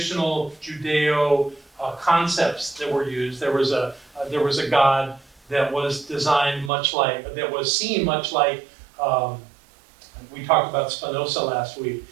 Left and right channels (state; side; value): drops out; left; at 6.7 s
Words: Judeo concepts that were used. There was a God that was designed that was seen much like, we talked about Spinoza last week,